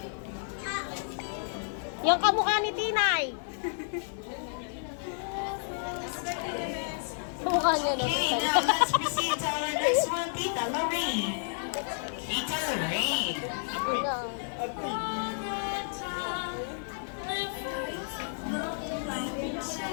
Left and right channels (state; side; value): silent; right; 57 dB below the other